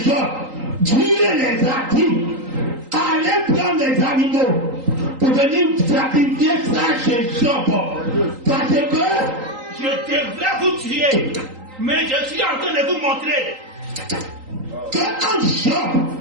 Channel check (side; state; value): left; late; 3.8 ms